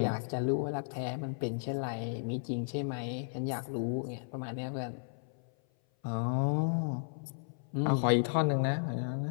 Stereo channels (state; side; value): silent; right; 55 dB below the other